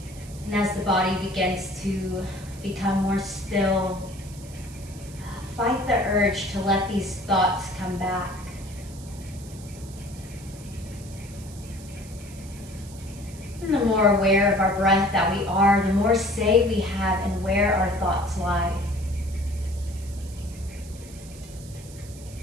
And as the body begins to become more still, fight the urge to let these thoughts come back. And the more aware of our breath that we are, the more say we have in where our thoughts lie.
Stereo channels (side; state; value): right; noise; hiss, 19 dB below the sound